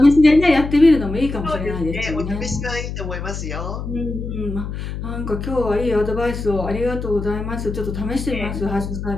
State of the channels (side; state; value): left; noise; hum, 6 dB below the sound